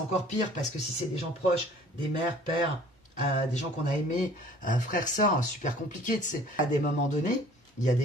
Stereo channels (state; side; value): normal; both; correlation 0.51